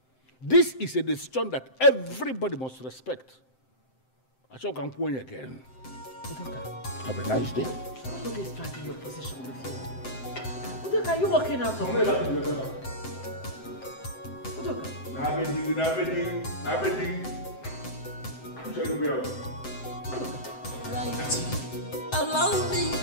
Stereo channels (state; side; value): late; right; 7.7 ms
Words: This is a decision that everybody must respect. I shall come point again. Have a nice day. Who is dragging your position with you? Udoka, are you walking out of here? Udoka. Allow me